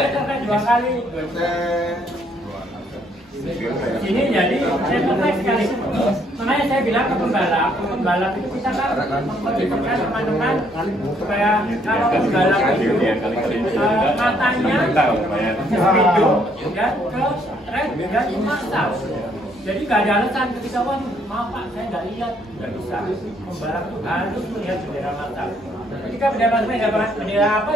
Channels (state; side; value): normal; both; correlation 0.68